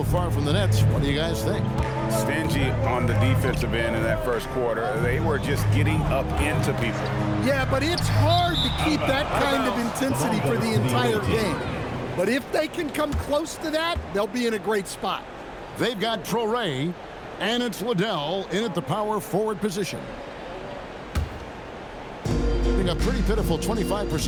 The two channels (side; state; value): both; identical; correlation 1.00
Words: far from the Nets, what do you guys think? Stingy on the defensive end in that first quarter. They were just getting up into people. Yeah, but it's hard to keep that kind of intensity for the entire game. But if they can come close to that, they'll be in a great spot. They've got Traore, and it's Liddell in at the power forward position. A pretty pitiful